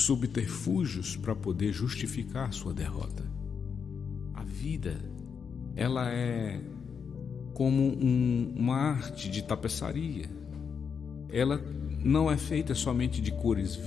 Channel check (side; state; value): right; quieter; 6.5 dB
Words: para poder justificar sua derrota. A vida, ela é como uma arte de tapeçaria. Ela não é feita somente de cores